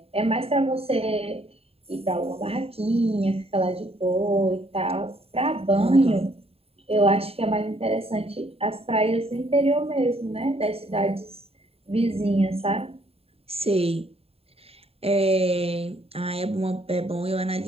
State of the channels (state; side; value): late; left; 0.29 ms